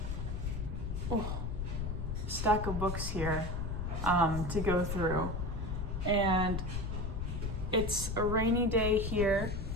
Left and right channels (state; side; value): noise; left; rumble, 3 dB below the sound